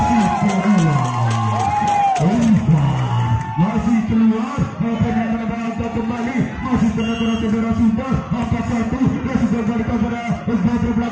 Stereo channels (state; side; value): identical; both; correlation 1.00